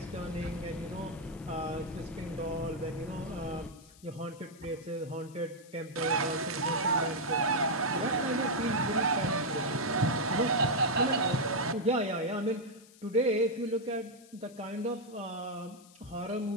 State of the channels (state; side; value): noise; left; hiss, 24 dB below the sound